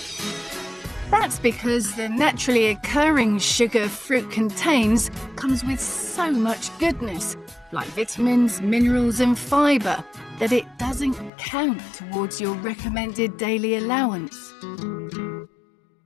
That's because the naturally occurring sugar fruit contains comes with so much goodness, like vitamins, minerals and fibre, that it doesn't count towards your recommended daily allowance.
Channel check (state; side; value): drops out; right; at 11.3 s